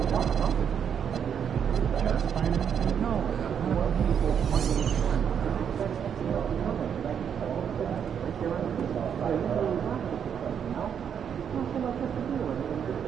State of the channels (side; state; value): left; quieter; 8.0 dB